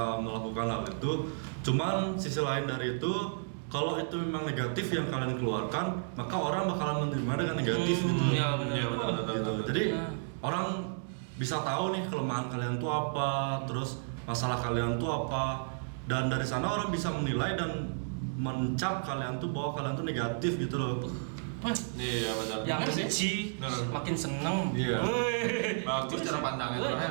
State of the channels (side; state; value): left; silent; digital silence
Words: melakukan hal itu. Cuman sisi lain dari itu, kalau itu memang negatif yang kalian keluarkan, maka orang bakalan menerima dengan negatif gitu. Iya, benar. Iya, benar. Gitu. Jadi orang bisa tahu nih kelemahan kalian tuh apa, terus masalah kalian tuh apa, dan dari sana orang bisa menilai dan mencap kalian tuh bahwa kalian tuh negatif gitu loh. Iya benar. Yang benci makin seneng. Iya. Bagus cara pandangnya tuh ya.